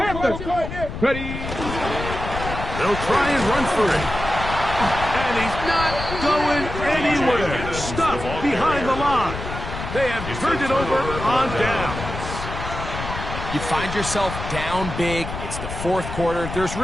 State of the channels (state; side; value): noise; left; rumble, 7 dB below the sound